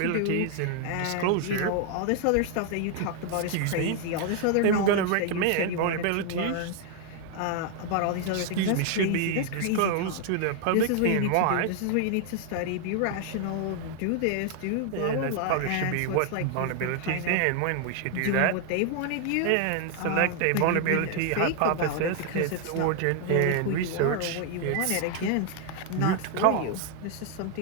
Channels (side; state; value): both; different; correlation 0.00